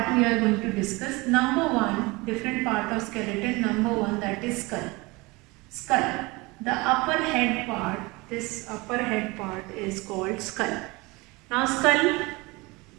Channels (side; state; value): left; quieter; 24.1 dB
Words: we are going to discuss. Number one, different part of skeleton. Number one, that is skull. The upper head part, this upper head part is called skull. Now skull